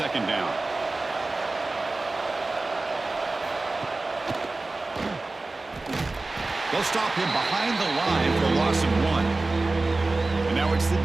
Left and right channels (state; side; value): quieter; left; 3.2 dB